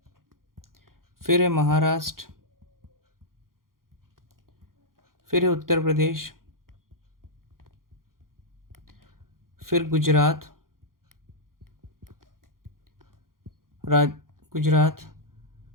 फिर है महाराष्ट्र, फिर है उत्तर प्रदेश, फिर गुजरात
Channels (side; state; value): left; late; 0.91 ms